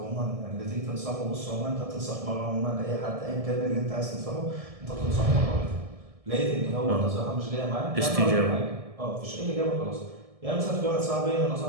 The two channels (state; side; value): late; left; 1.7 ms